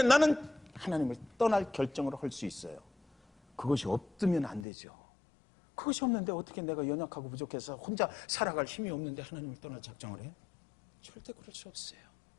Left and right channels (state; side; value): drops out; right; at 4.7 s